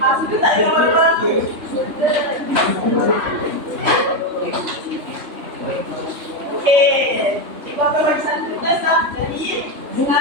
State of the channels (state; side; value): late; left; 3.3 ms